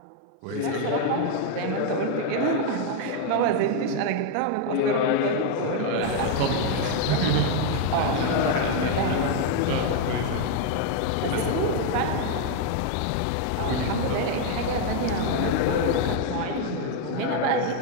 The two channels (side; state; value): both; different; correlation 0.00